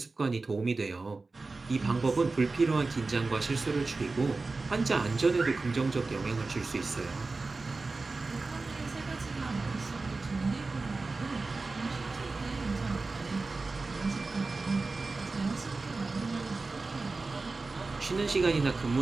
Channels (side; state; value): left; quieter; 3.7 dB